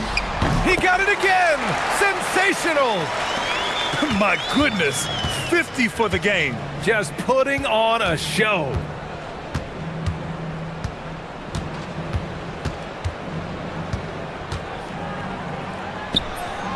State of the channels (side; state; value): both; identical; correlation 1.00